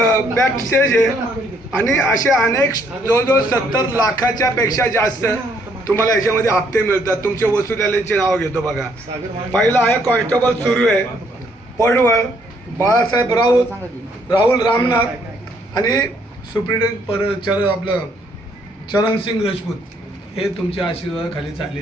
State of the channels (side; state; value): both; normal; correlation 0.68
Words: स्टेज आहे आणि असे अनेक जवळजवळ 70 लाखाच्या पेक्षा जास्त तुम्हाला याच्यामध्ये हप्ते मिळतात. तुमचे वसुलीचे नाव घेतो बघा. पहिला आहे कॉन्स्टेबल सुरू आहे, पडवळ, बाळासाहेब राहुल रामनाथ आणि सुप्रिटेंडेंट आपलं चरणसिंग राजपूत. हे तुमच्या आशीर्वादाखाली